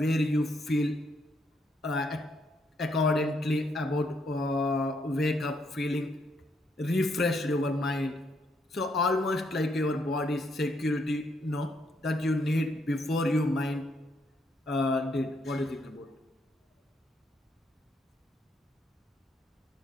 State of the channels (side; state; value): both; normal; correlation 0.74